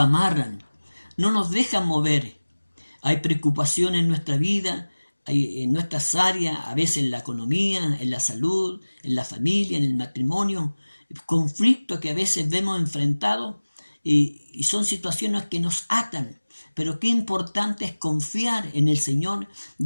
no nos dejan mover. Hay preocupación en nuestra vida, hay en nuestras áreas, a veces en la economía, en la salud, en la familia, en el matrimonio, conflictos que a veces vemos enfrentados y son situaciones que nos atan. Pero qué importante es confiar en el Señor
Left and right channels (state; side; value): inverted; both; correlation -1.00